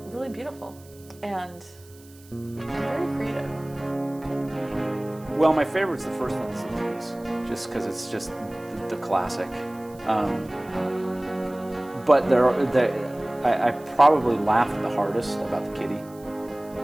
really beautiful and very creative. Well, my favorite's the first one, is the Wheaties, just because it's just the classic. But I probably laughed the hardest about the kitty.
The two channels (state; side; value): noise; right; hiss, 25 dB below the sound